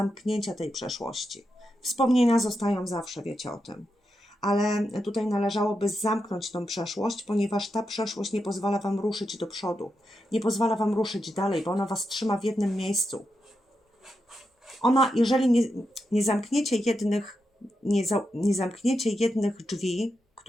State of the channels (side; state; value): both; normal; correlation 0.86